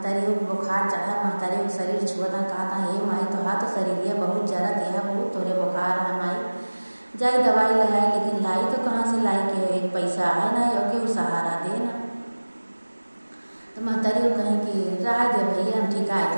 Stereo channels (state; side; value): inverted; both; correlation -1.00